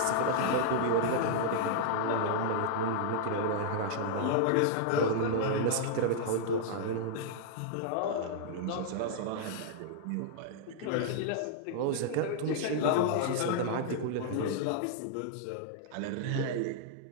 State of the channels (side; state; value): both; different; correlation -0.01